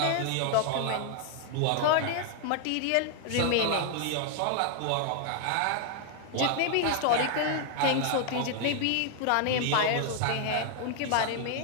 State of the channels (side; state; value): both; different; correlation 0.00